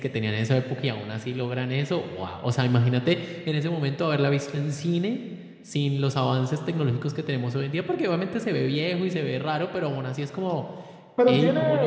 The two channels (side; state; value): both; identical; correlation 1.00